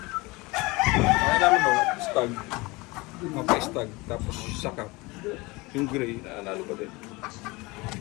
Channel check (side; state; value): right; quieter; 23.8 dB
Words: Kaya namin no, stag. Mapa-stag, tapos sakap. Yung gray, nanalo pa din.